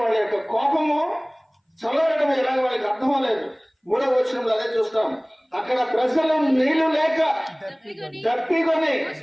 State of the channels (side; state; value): both; identical; correlation 1.00